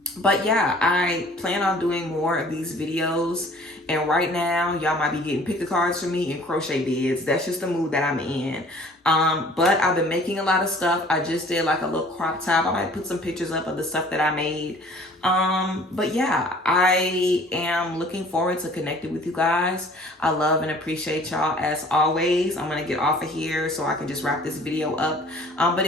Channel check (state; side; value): normal; both; correlation 0.51